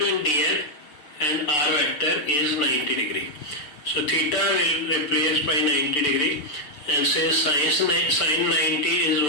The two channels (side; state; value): right; late; 6.8 ms